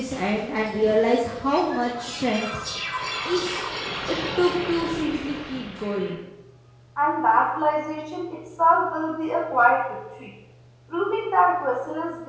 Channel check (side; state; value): both; identical; correlation 1.00